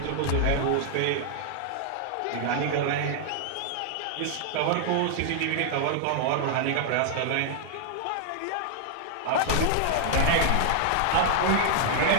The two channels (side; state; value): both; different; correlation 0.00